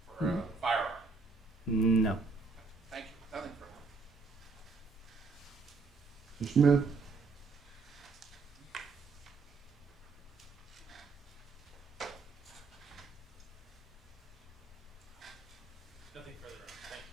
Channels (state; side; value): quieter; left; 4.1 dB